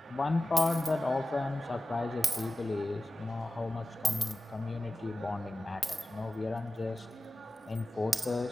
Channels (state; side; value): normal; both; correlation 0.96